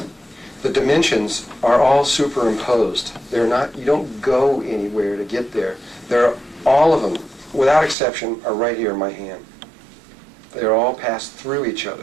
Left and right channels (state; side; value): drops out; left; at 8.0 s